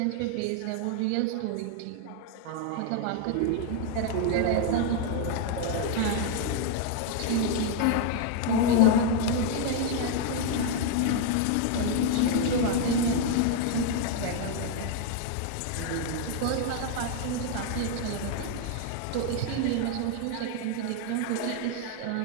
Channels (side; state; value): both; different; correlation 0.00